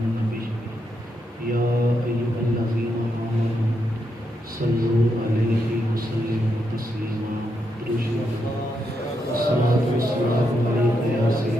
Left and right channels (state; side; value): normal; both; correlation 0.82